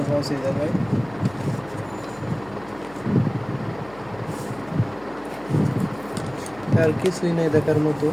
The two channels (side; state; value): left; noise; hum, 22 dB below the sound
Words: আছে এই জায়গায়। আর কিছুই নেই দেখার মতো।